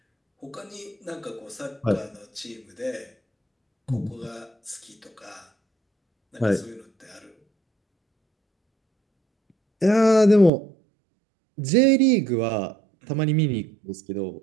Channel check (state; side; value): drops out; left; at 10.5 s